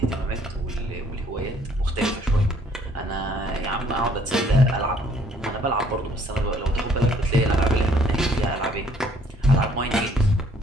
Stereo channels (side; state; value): both; normal; correlation 0.61